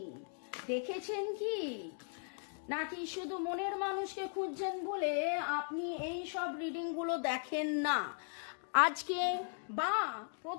দেখেছেন কি? নাকি শুধু মনের মানুষকে খুঁজছেন বলে আপনি এই সব রিডিংগুলো দেখেন না? আজকে বা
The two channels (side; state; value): right; silent; 53 dB below the other